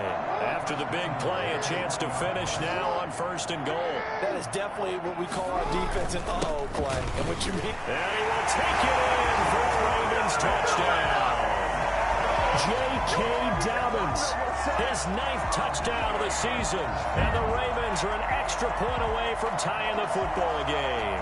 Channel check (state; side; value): identical; both; correlation 1.00